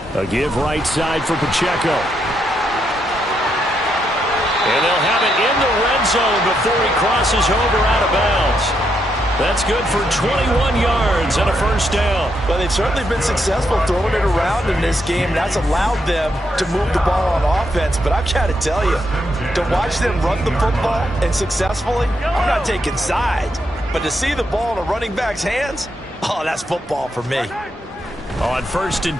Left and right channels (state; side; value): normal; both; correlation 0.79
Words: A give right side for Pacheco. And they'll have it in the red zone before he crosses over out of bounds. That's good for 21 yards and a first down. Well, they've certainly been successful throwing it around in this game, and that's allowed them to move the ball on offense. But I've got to tell you, to watch them run the football and successfully, I'm not taking sides. But to see the ball in a running back's hands, oh, that's football for me. On 1st and